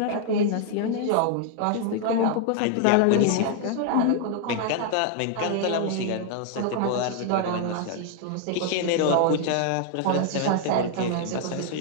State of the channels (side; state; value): both; different; correlation 0.00